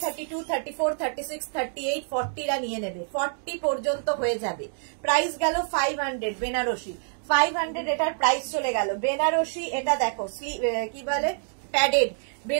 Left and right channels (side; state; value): left; silent; digital silence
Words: 32, 34, 36, 38, 40 রা নিয়ে নেবে, 40 পর্যন্ত হয়ে যাবে। প্রাইস গেল 500 বেনারসি, 500 এটার প্রাইস চলে গেল। বেনারসি এটা দেখো, কি বলে প্যাডেড,